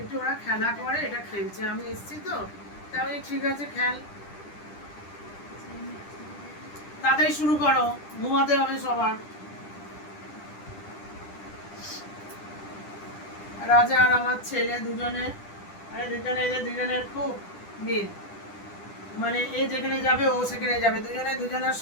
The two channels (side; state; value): right; late; 10 ms